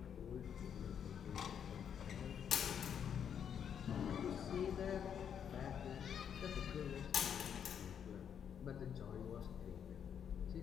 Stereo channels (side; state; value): right; quieter; 8.2 dB